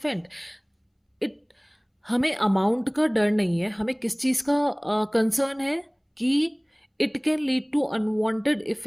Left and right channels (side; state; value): both; identical; correlation 1.00